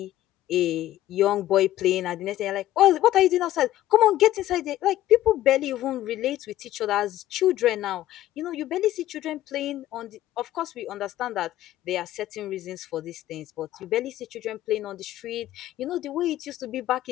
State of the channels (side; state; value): right; quieter; 14.1 dB